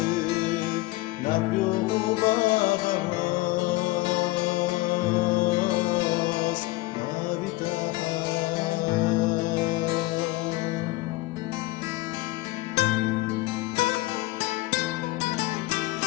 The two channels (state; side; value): quieter; right; 20.0 dB